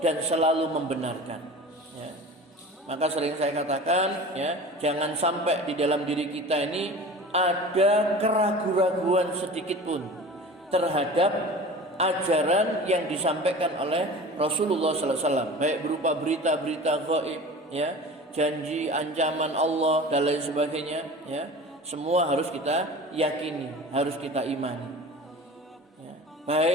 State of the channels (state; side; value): normal; both; correlation 0.38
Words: selalu membenarkan, ya. Maka sering saya katakan, ya, jangan sampai di dalam diri kita ini ada keraguan-raguan sedikit pun terhadap ajaran yang disampaikan oleh Rasulullah sallallahu alaihi wasallam, baik berupa berita-berita gaib, ya, janji, ancaman Allah dan lain sebagainya, ya. Semua harus kita yakini, harus kita imani.